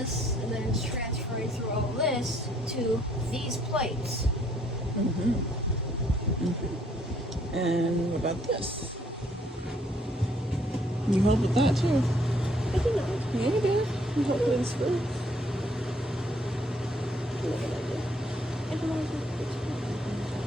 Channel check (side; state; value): both; normal; correlation 0.65